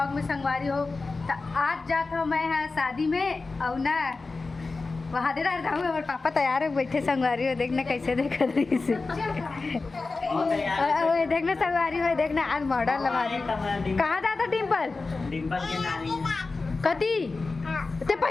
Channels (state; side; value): quieter; right; 3.8 dB